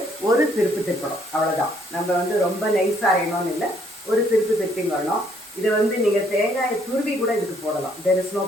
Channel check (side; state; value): both; normal; correlation 0.67